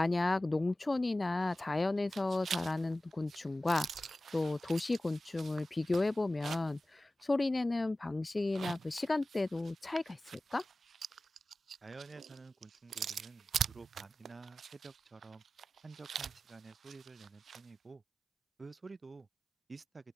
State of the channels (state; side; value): normal; both; correlation 0.96